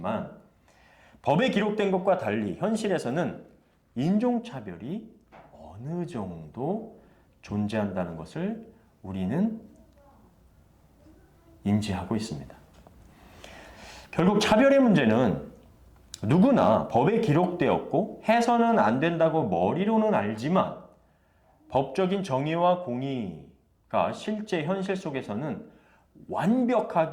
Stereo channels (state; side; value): identical; both; correlation 1.00